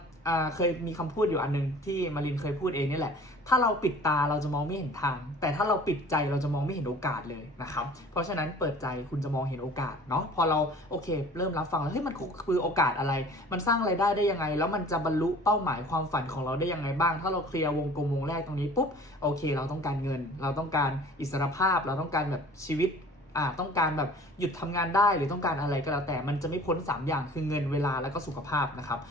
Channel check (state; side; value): normal; both; correlation 0.47